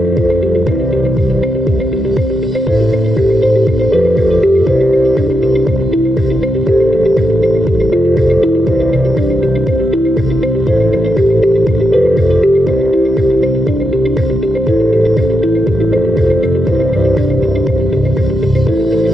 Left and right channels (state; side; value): normal; both; correlation 0.84